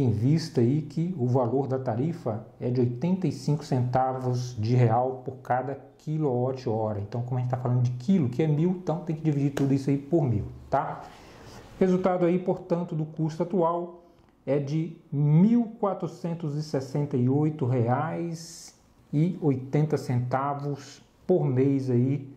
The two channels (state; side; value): identical; both; correlation 1.00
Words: vista aí que o valor da tarifa é de 85 centavos de real por cada quilowatt-hora. Então, como a gente está falando de quilo, que é 1.000, então tem que dividir tudo isso aí por 1.000, tá? Resultado aí, portanto, do custo atual é de R$ 1.468,80 por mês aí,